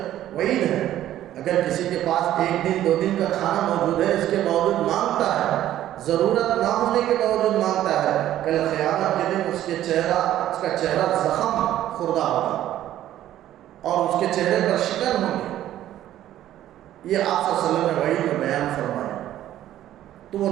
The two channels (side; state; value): left; quieter; 12.7 dB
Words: وعید ہے، اگر کسی کے پاس 1 دن 2 دن کا کھانا موجود ہے، اس کے باوجود مانگتا ہے، ضرورت نہ ہونے کے باوجود مانگتا ہے، کل قیامت کے دن اس کا چہرہ زخم خوردہ ہوگا اور اس کے چہرے پر شکن ہوگی۔ یہ آپ صلی اللہ علیہ وسلم نے وحی میں بیان فرمایا۔ تو